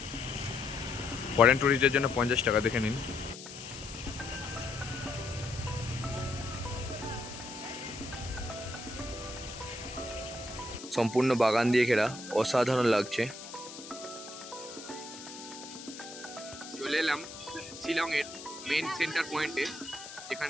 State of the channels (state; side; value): noise; left; hiss, 13 dB below the sound